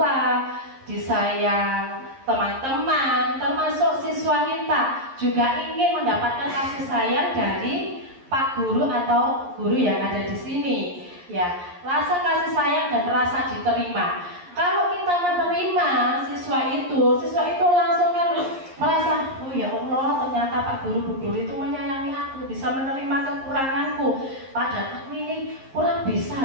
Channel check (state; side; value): late; left; 11 ms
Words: disayang teman-teman, termasuk siswa kita juga ingin mendapatkan kasih sayang dari Pak Guru atau guru yang ada di sini. Ya, rasa kasih sayang dan rasa diterima. Kalau kita menerima siswa itu langsung kan merasa, oh ya Allah, ternyata Pak Guru, Bu Guru itu menyayangi aku, bisa menerima kekuranganku. Padahal aku ini kurang